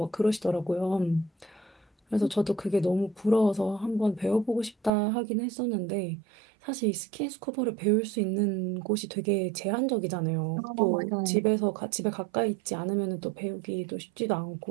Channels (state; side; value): drops out; left; at 4.9 s